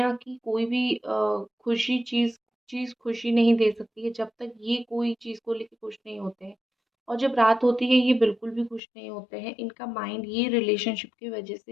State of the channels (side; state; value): right; drops out; at 8.8 s